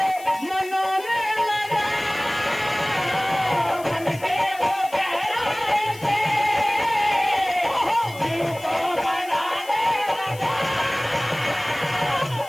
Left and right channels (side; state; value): left; noise; hiss, 19 dB below the sound